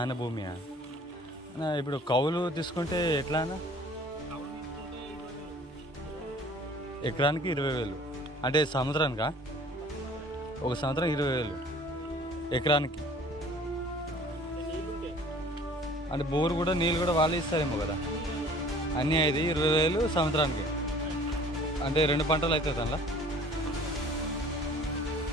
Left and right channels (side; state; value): both; normal; correlation 0.50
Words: భూమియా? ఇప్పుడు కౌలు తీసుకుంటే ఎట్లా అన్న? ఎకరానికి 20,000 అంటే సంవత్సరానికా? ఒక సంవత్సరం 20,000 ఎకరానికి. అంటే బోరు కూడా నీళ్ళు కూడా వాళ్ళు ఇస్తారేమో కదా అన్నీ. అయితే 20,000 సంవత్సరానికి అంటే 2 పంటలు అవుతుంది అందులో.